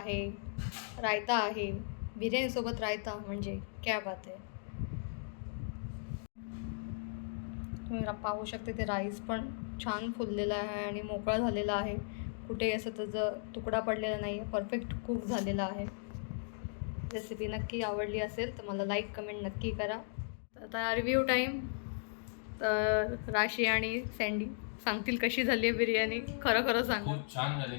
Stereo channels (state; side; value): silent; right; digital silence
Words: रायता आहे, बिर्याणीसोबत रायता म्हणजे क्या बात आहे. तुम्ही पाहू शकता ते राईस पण छान फुललेला आहे आणि मोकळा झालेला आहे, कुठे असं त्याचं तुकडा पडलेला नाही आहे, परफेक्ट कुक झालेला आहे. रेसिपी नक्की आवडली असेल तर मला लाईक कमेंट नक्की करा. तर आता रिव्ह्यू टाईम. तर राशी आणि सँडी सांगतील कशी झाली आहे बिर्याणी. खरं खरं सांग. खूप छान